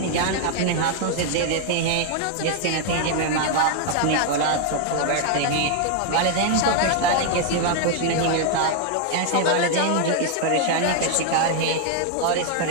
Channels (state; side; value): different; both; correlation 0.00